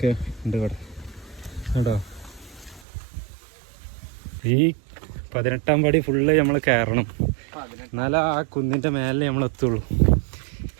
ഉണ്ട് ഇവിടെ കേട്ടോ. ഈ 18ാം പടി ഫുള്ള് നമ്മൾ കയറണം, എന്നാലും ആ കുന്നിൻ്റെ മേലെ നമ്മൾ എത്തുള്ളൂ.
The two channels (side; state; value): left; drops out; at 2.9 s